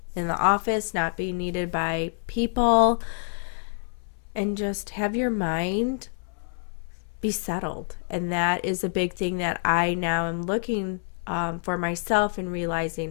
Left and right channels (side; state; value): right; silent; 60 dB below the other